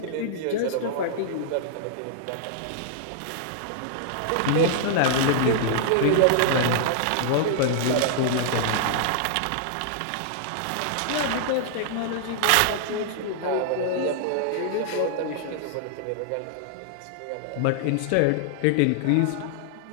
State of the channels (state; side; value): different; both; correlation -0.01